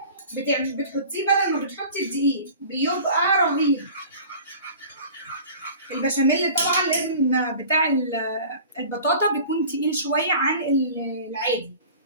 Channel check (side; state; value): both; inverted; correlation -0.43